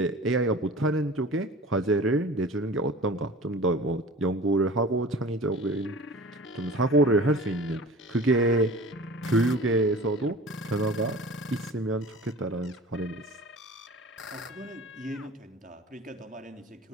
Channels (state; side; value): normal; both; correlation 0.40